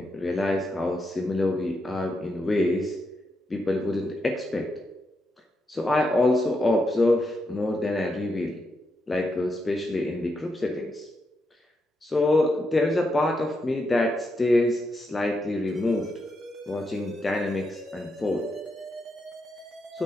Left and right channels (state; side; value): normal; both; correlation 0.83